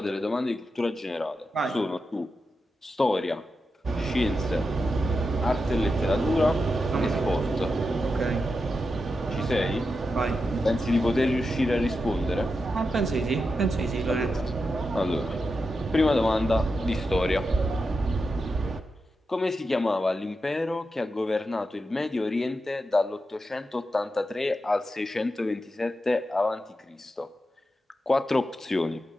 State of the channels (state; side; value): normal; both; correlation 0.88